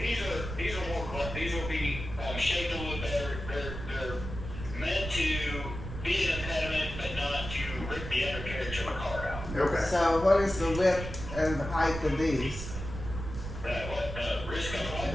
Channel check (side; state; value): right; noise; rumble, 8 dB below the sound